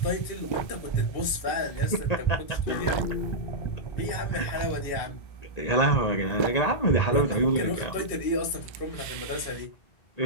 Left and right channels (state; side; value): late; right; 1.9 ms